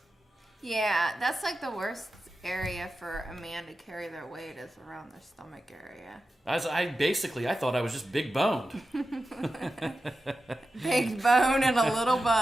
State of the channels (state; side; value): normal; both; correlation 0.92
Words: Yeah, that's like the worst area for a man to carry their weight is around their stomach area. I thought I was just big boned. Big bone and a little